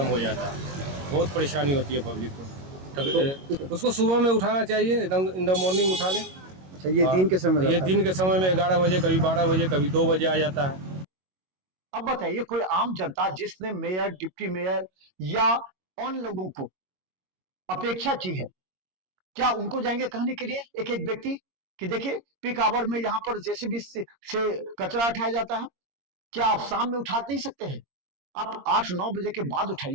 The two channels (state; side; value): late; left; 22 ms